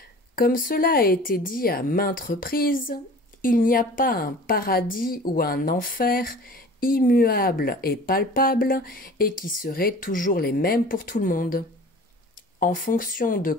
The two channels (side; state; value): both; normal; correlation 0.43